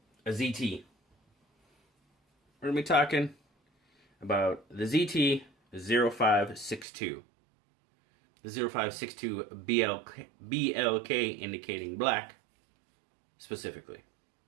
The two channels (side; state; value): left; drops out; at 6.9 s